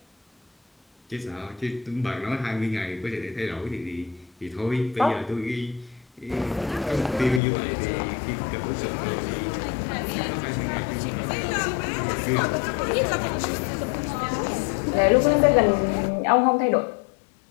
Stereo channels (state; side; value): drops out; right; at 7.4 s